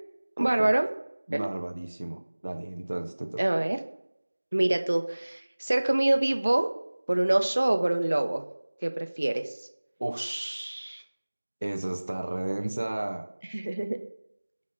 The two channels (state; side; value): inverted; both; correlation -1.00